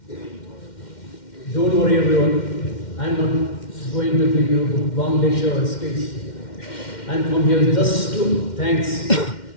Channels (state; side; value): late; right; 2.1 ms